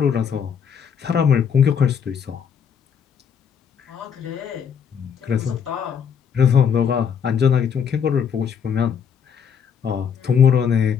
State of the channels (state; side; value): quieter; right; 7.4 dB